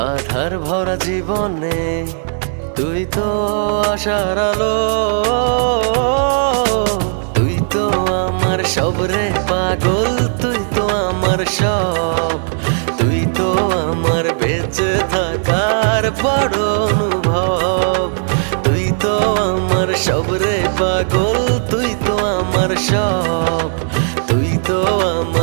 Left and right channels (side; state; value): left; silent; digital silence